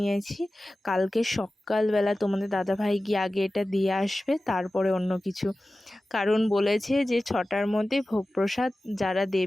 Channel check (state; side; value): normal; both; correlation 0.96